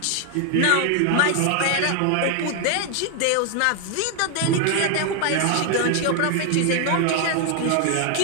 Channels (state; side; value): different; both; correlation 0.01